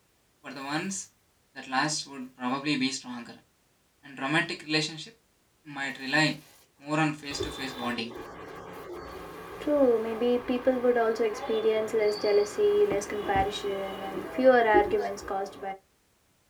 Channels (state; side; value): identical; both; correlation 1.00